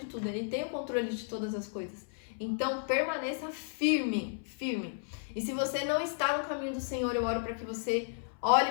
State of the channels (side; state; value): right; silent; 56 dB below the other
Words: tudo. Ele tem o controle de todas as coisas. Então, permaneça firme, firme. E se você não está no caminho do Senhor, eu oro para que você